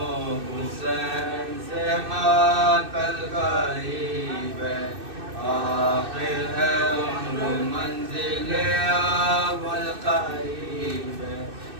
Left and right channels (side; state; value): left; late; 2.6 ms